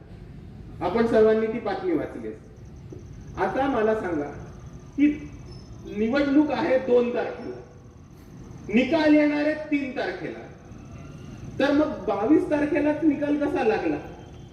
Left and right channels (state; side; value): identical; both; correlation 1.00